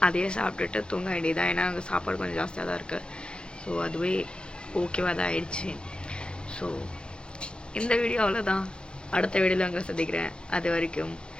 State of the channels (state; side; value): late; right; 0.056 ms